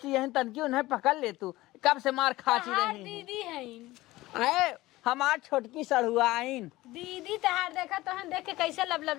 यही तनकी उन्हें पकड़ ले तू कब से मार खाची रही दीदी है अरे हमार छोटकी सड़ुआइन दीदी तहार देखा तो हम देख के कैसे लब लब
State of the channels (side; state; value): right; quieter; 18.3 dB